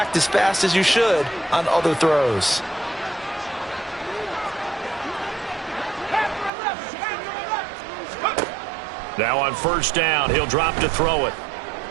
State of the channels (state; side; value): drops out; left; at 6.5 s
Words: as fast as you should on other throws. Now on first down, he'll drop to throw it.